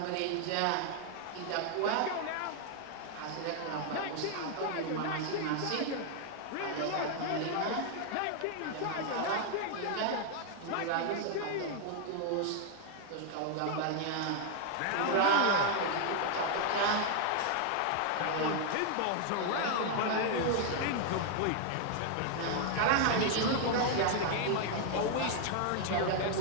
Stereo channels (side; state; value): both; different; correlation 0.00